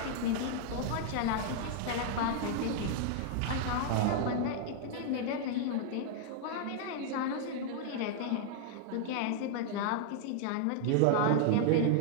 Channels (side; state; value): both; different; correlation -0.01